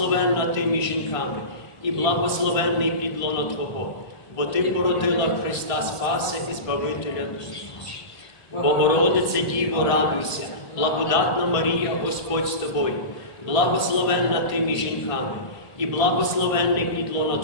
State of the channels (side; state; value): right; late; 1.8 ms